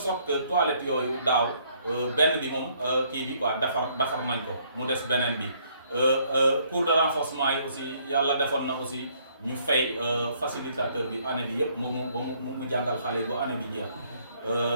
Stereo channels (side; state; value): both; inverted; correlation -0.66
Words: que toilette yooyu daaw benn bi moom kii bi quoi defar nañ ko mu des beneen bi cours de renforcement yi aussi yàlla defoon na aussi ñu fay facilitateur bi année bi yëpp mu jàngal xale yi ba année bi jeex